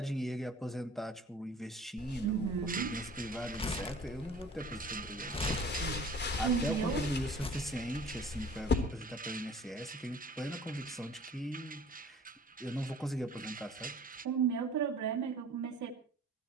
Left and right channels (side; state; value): both; normal; correlation 0.48